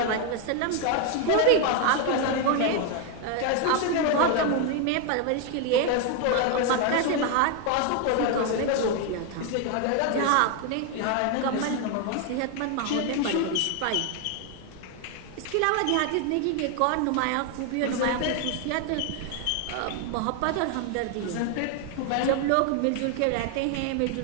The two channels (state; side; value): different; both; correlation 0.01